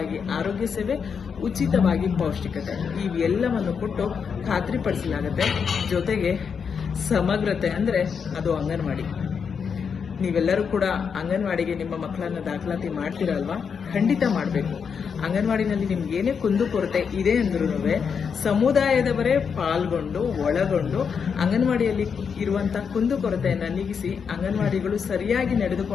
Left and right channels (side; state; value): right; quieter; 6.4 dB